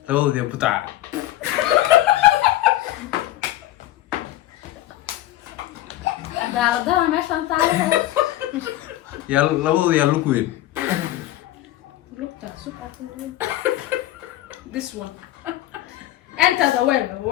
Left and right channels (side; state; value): right; quieter; 14.6 dB